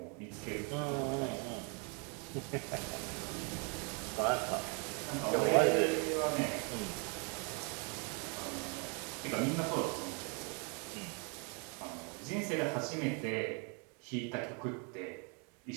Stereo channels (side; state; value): left; quieter; 35.8 dB